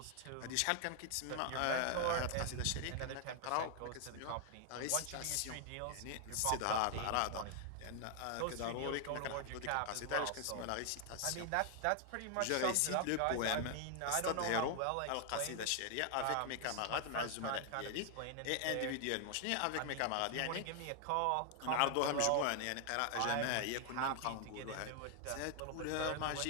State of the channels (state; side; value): different; both; correlation 0.00